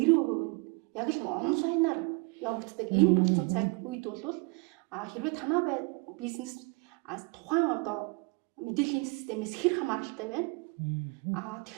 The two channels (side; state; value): left; quieter; 29.3 dB